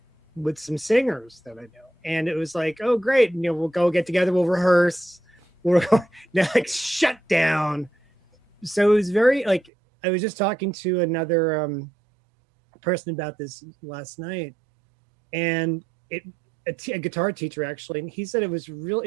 with some singers that I know, and it was like, oh great, we'll go get together, we'll rehearse, like shut down. So it was very like, I was just talking to another person about this last night, and a guitar teacher actually, and he said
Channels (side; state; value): left; drops out; at 9.7 s